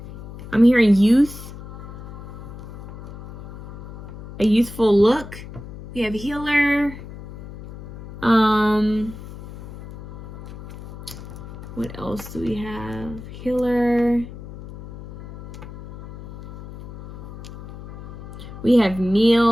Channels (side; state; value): left; noise; hum, 13 dB below the sound